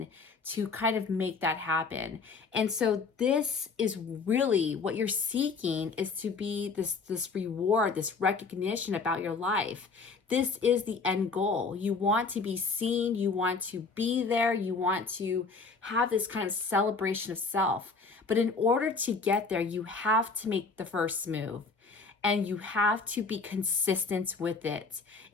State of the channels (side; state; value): right; quieter; 4.5 dB